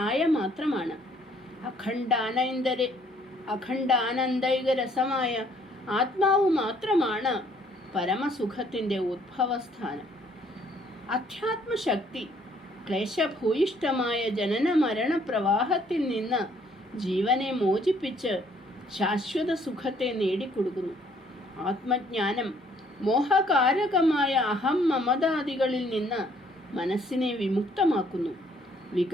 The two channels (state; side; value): normal; both; correlation 0.63